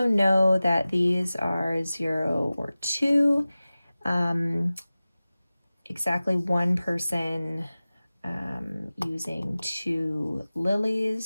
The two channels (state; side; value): inverted; both; correlation -0.97